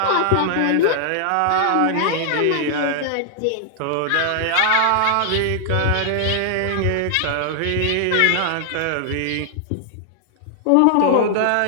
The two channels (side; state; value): both; different; correlation -0.01